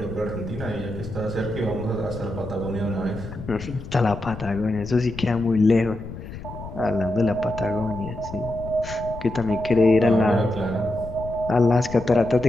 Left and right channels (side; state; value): left; noise; rumble, 12 dB below the sound